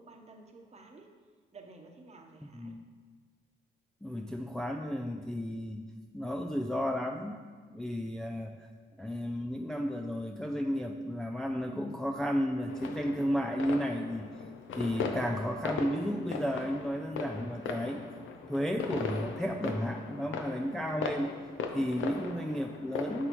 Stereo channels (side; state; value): both; normal; correlation 0.82